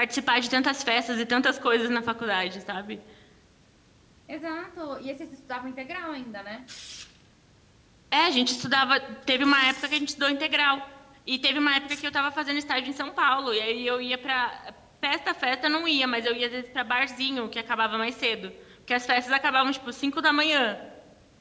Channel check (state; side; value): identical; both; correlation 1.00